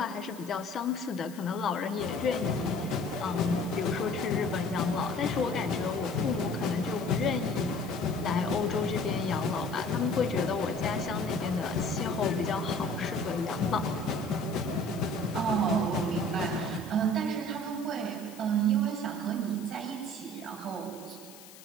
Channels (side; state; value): left; noise; hiss, 19 dB below the sound